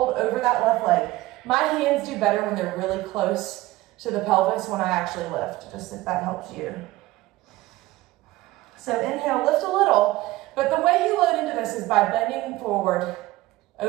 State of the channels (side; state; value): left; quieter; 18.0 dB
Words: over that left leg. My hands do better when they're really close to the pelvis when I actually lift, just if that helps you. So inhale, lift a little, but the way you load into this is by bending forward